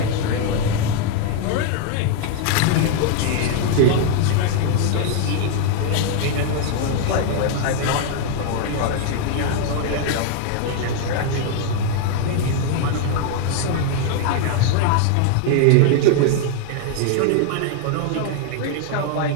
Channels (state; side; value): different; both; correlation 0.00